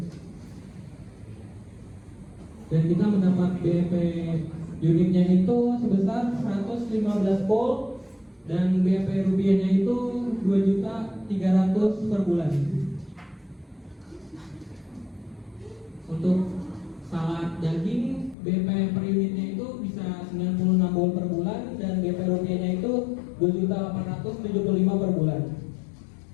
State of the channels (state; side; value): drops out; right; at 18.4 s